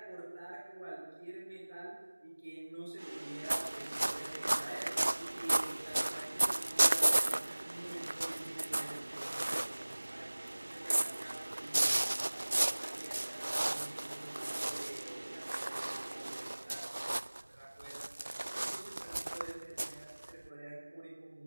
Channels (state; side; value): inverted; both; correlation -1.00